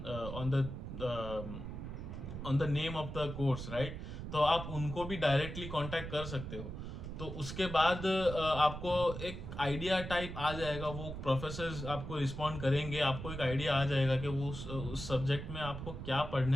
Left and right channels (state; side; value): noise; right; rumble, 8 dB below the sound